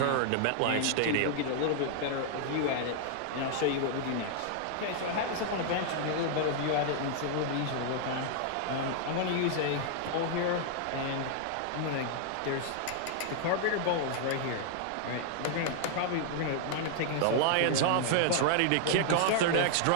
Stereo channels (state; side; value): different; both; correlation -0.01